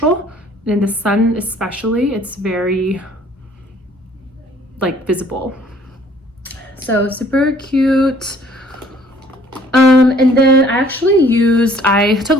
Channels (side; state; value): both; normal; correlation 0.58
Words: And in the sun especially, it's very like visible. So super cute. And then I took a